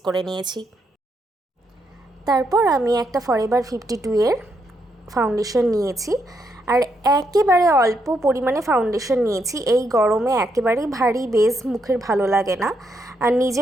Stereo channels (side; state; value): both; normal; correlation 0.78